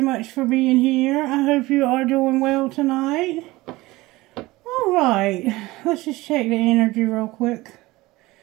for being here. I hope you are doing well tonight. Alright, let's just check the energy real quick.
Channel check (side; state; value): left; quieter; 19.8 dB